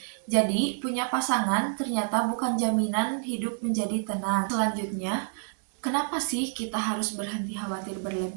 Jadi, punya pasangan ternyata bukan jaminan hidup menjadi tenang. Selanjutnya, kenapa sih kita harus berhenti khawatir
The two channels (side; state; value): left; silent; digital silence